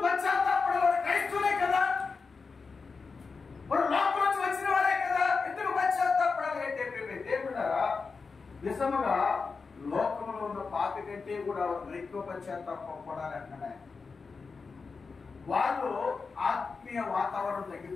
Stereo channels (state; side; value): quieter; right; 4.7 dB